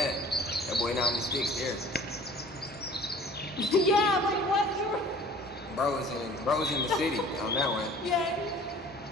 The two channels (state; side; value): normal; both; correlation 0.48